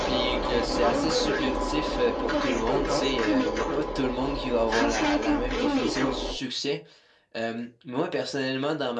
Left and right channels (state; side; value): identical; both; correlation 1.00